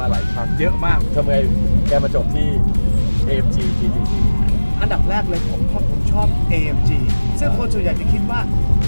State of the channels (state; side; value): inverted; both; correlation -1.00